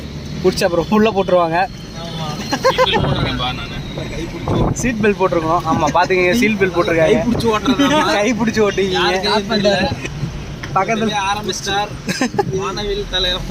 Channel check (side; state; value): both; identical; correlation 1.00